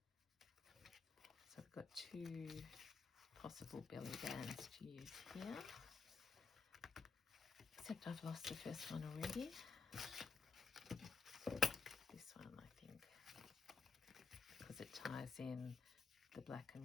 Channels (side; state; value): right; quieter; 5.0 dB